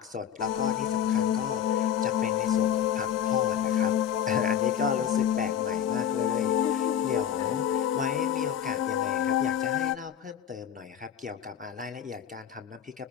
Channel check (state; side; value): quieter; right; 9.4 dB